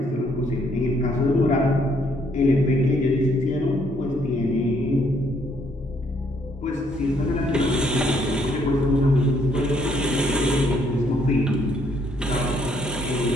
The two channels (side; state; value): both; normal; correlation 0.68